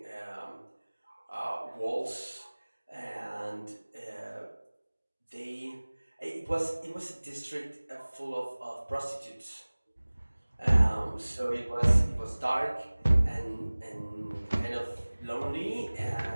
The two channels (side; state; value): both; inverted; correlation -1.00